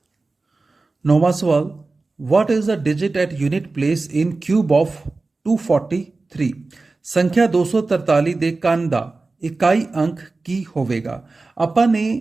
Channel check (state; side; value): quieter; left; 3.6 dB